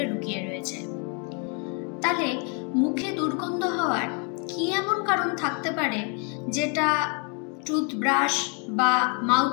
লুকিয়ে রয়েছে। তাহলে মুখে দুর্গন্ধ হওয়ার কি এমন কারণ থাকতে পারে যেটা টুথব্রাশ বা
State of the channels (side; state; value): right; quieter; 36.8 dB